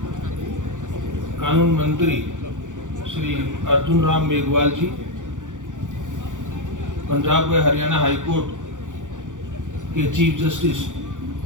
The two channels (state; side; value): late; left; 0.87 ms